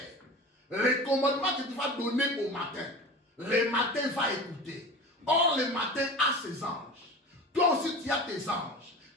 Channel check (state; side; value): normal; both; correlation 0.34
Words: Les commandements que tu vas donner au matin. Le matin va écouter. Or, le matin a ses anges. Toi aussi, tu as tes anges.